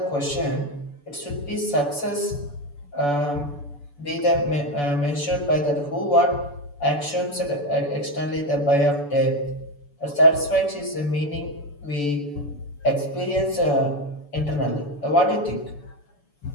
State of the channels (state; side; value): late; right; 6.9 ms